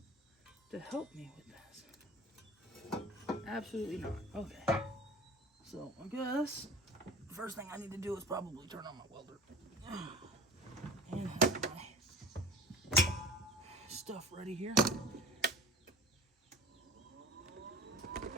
to help me with this? Absolutely not. Okay. So I guess the first thing I need to do is probably turn on my welder and have my stuff ready here.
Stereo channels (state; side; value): normal; both; correlation 0.38